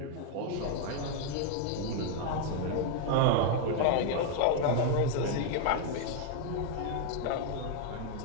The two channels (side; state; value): both; different; correlation 0.00